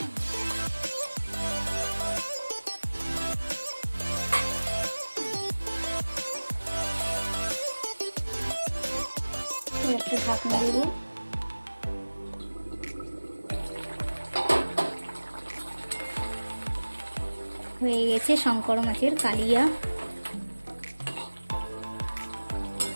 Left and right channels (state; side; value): inverted; both; correlation -1.00